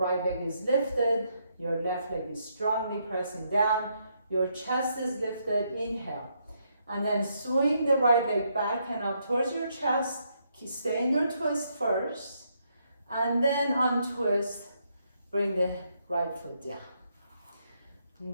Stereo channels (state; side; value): inverted; both; correlation -0.76